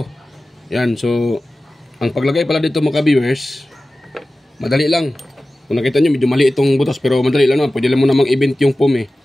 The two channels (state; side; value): normal; both; correlation 0.96